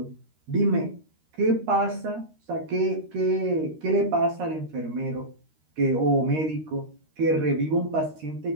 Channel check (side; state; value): left; late; 13 ms